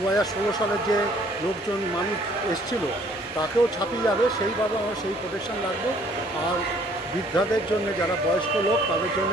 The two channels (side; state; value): both; normal; correlation 0.60